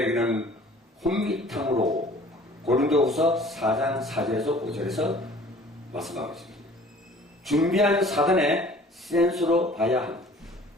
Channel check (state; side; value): normal; both; correlation 0.50